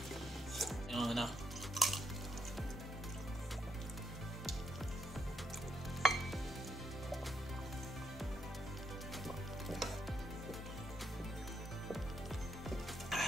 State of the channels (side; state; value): both; normal; correlation 0.77